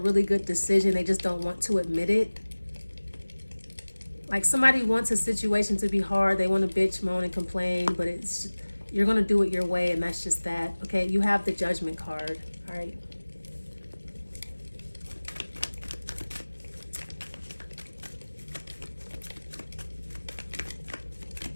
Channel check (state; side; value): inverted; both; correlation -1.00